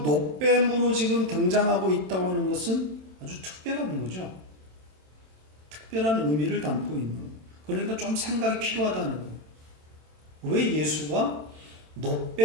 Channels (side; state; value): left; late; 27 ms